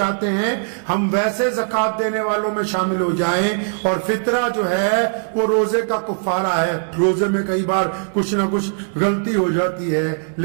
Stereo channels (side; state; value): left; silent; digital silence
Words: ہیں ہم ویسے زکوٰۃ دینے والوں میں شامل ہو جائیں. اور فطرہ جو ہے وہ روزے کا کفارہ ہے. روزے میں کئی بار کچھ نہ کچھ غلطی ہو جاتی ہے,